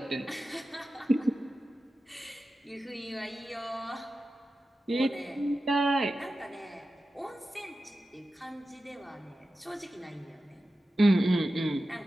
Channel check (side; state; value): both; normal; correlation 0.93